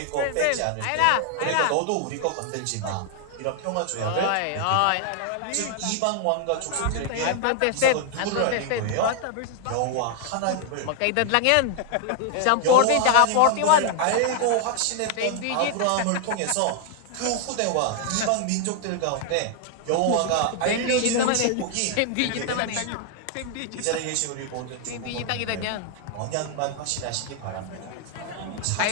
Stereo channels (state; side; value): different; both; correlation 0.00